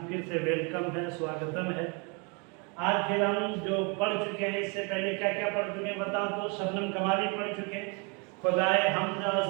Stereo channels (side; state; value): left; quieter; 32.8 dB